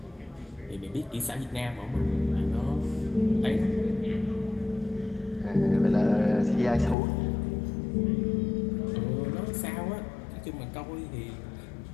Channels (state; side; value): drops out; right; at 7.0 s